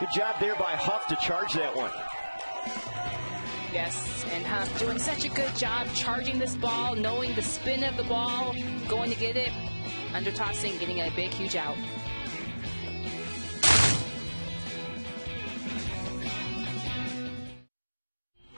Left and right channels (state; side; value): inverted; both; correlation -1.00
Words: job there by Huff to charge that one. Yes, and Huff doing such a good job charging this ball, knowing the spin of the ball, going to get it, under tossing, getting a big, huge out.